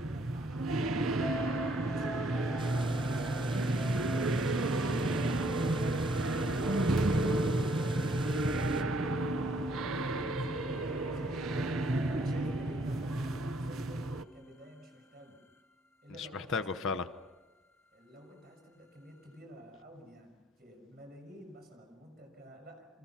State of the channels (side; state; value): both; normal; correlation 0.67